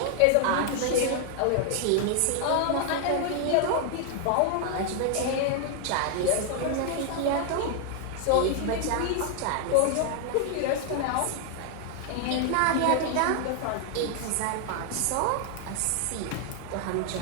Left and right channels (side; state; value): both; different; correlation 0.00